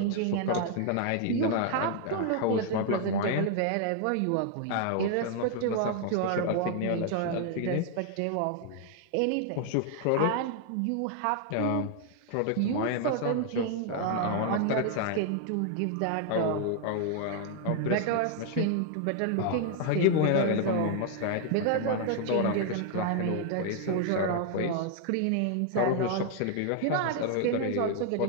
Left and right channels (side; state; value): both; different; correlation 0.00